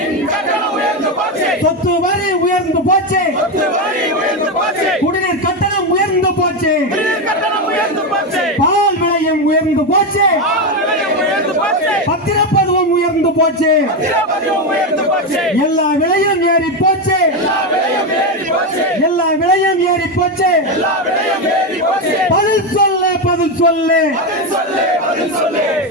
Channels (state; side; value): normal; both; correlation 0.10